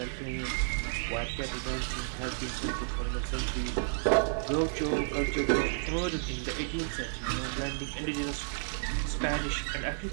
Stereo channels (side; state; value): left; silent; 57 dB below the other